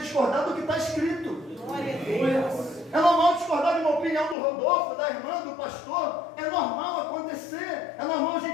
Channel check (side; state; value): right; drops out; at 4.4 s